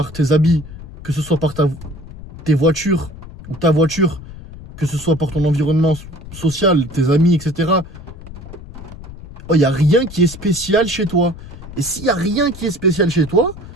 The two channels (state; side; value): noise; left; rumble, 15 dB below the sound